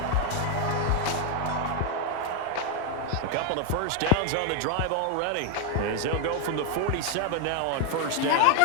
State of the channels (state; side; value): different; both; correlation 0.01